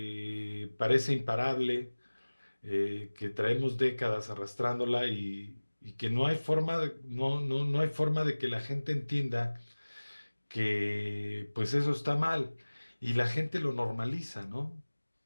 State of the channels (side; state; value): both; inverted; correlation -1.00